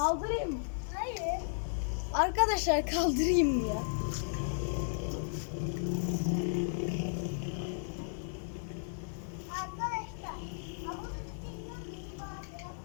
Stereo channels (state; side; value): silent; right; digital silence